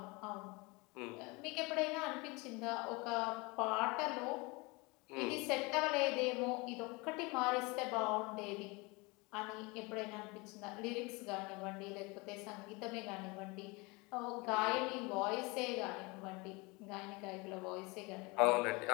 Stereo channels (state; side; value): quieter; right; 26.2 dB